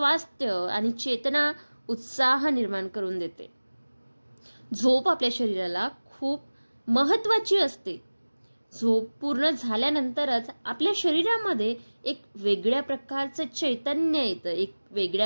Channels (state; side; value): inverted; both; correlation -1.00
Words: आणि चेतना, उत्साह निर्माण करून देते. झोप आपल्या शरीराला खूप महत्त्वाची असते. झोप पूर्ण झाल्यानंतरच आपल्या शरीरामध्ये एक वेगळ्या प्रकारचं चैतन्य येतं, एक